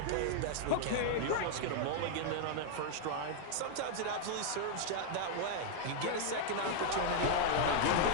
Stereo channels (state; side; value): different; both; correlation 0.00